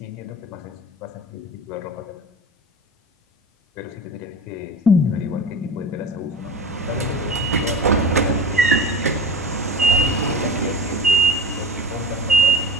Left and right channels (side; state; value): both; normal; correlation 0.32